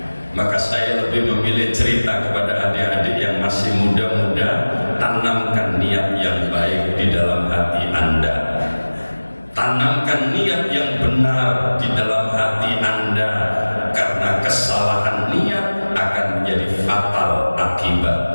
Maka saya lebih memilih cerita kepada adik-adik yang masih muda-muda, tanamkan niat yang baik di dalam hati Anda. Tanamkan niat yang benar di dalam hati Anda, karena kesalahan niat akan menjadi fatal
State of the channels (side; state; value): both; inverted; correlation -1.00